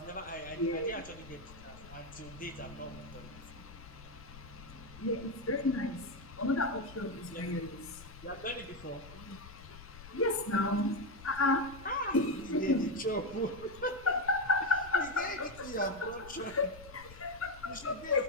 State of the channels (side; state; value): left; noise; rumble, 16 dB below the sound